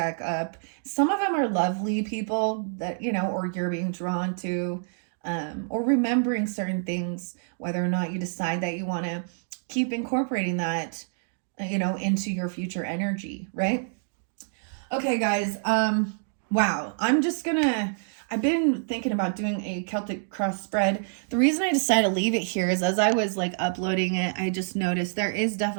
up. Some of them are lovely people that, you know, or you're being drawn to, or remembering certain things, whether or not you decide that you want to keep incorporating that, you know, into your future energy, right? Okay, guys. Wow. I've been thinking about doing a Celtic cross spread. The reason I decided to leave it here is as I was like uploading it, I just noticed there is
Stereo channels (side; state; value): left; silent; digital silence